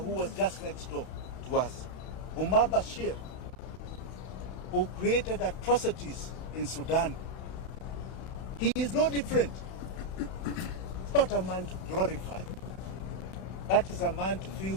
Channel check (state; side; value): late; right; 31 ms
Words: was just next door to us, Umar Bashir, who created atrocities in Sudan. He is no different. It's not a man to glorify. That is a man to feel